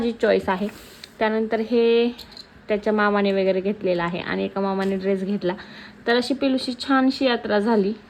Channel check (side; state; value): both; identical; correlation 1.00